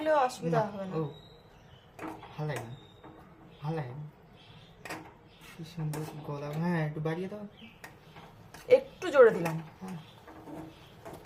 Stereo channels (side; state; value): both; identical; correlation 1.00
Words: অসুবিধা হবে না। ও ভালো লাগে, ভালো লাগে। কি সুন্দর গলা। হ্যাঁ একটু বাড়িয়ে দাও, একটু জোরে দিলাম। হ্যাঁ।